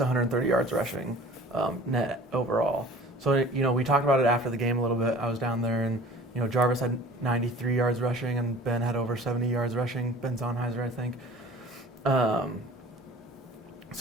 yards rushing net overall. So we talked about it after the game a little bit. I was down there, and Jarvis had 93 yards rushing, and Ben had over 70 yards rushing. Ben Zonheiser, I think.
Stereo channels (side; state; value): both; normal; correlation 0.45